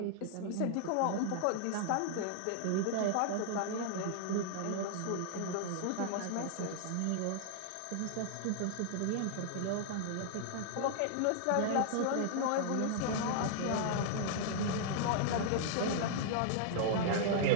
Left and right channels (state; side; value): different; both; correlation -0.01